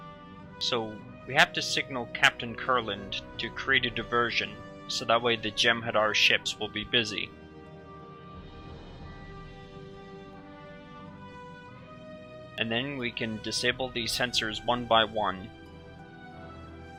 So we have to signal Captain Kurland to create a diversion, so that way the Jem'Hadar ships will be busy. And then we can disable these sensors one by one.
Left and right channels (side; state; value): both; identical; correlation 1.00